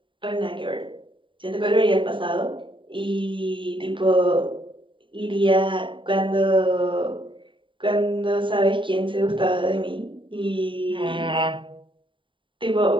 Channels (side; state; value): left; late; 0.24 ms